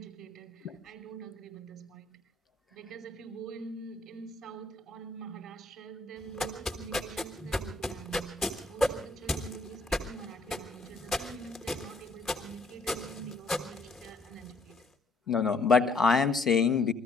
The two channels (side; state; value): right; quieter; 3.3 dB